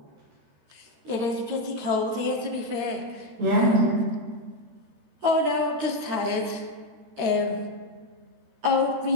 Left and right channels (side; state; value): left; late; 13 ms